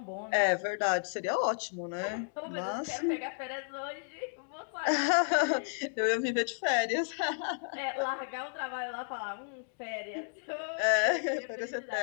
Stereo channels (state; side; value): silent; right; digital silence